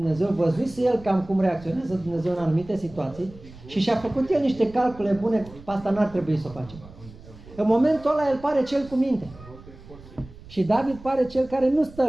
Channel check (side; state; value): right; noise; rumble, 19 dB below the sound